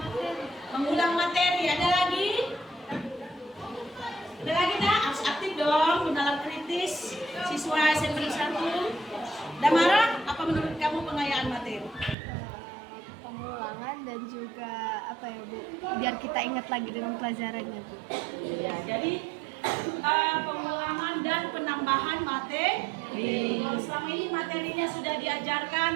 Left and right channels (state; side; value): drops out; left; at 12.2 s